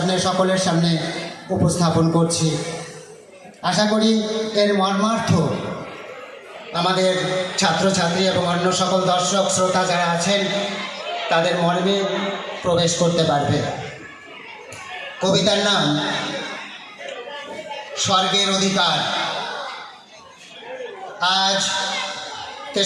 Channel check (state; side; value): identical; both; correlation 1.00